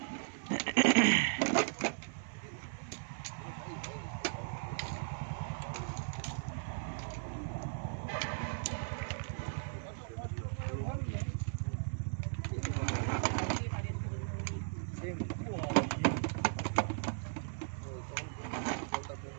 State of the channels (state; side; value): silent; left; 53 dB below the other